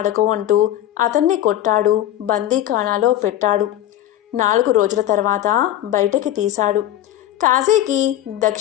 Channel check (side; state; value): right; quieter; 12.9 dB